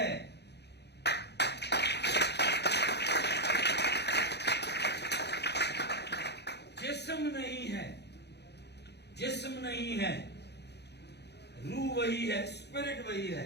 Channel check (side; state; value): right; late; 0.49 ms